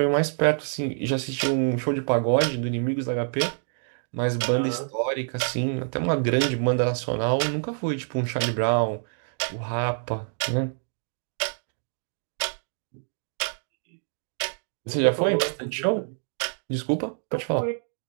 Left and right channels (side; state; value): left; silent; digital silence